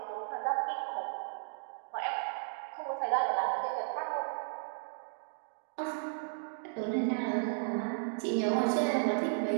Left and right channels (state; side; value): silent; left; digital silence